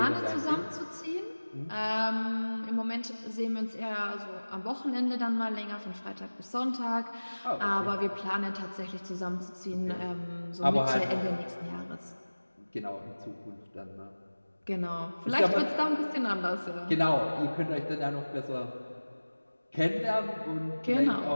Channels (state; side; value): inverted; both; correlation -1.00